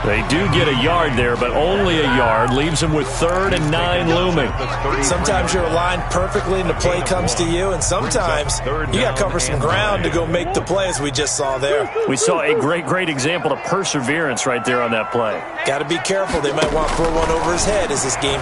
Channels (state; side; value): identical; both; correlation 1.00